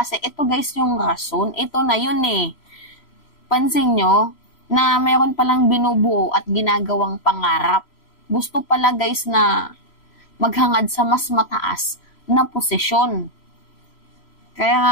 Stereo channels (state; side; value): late; right; 3.0 ms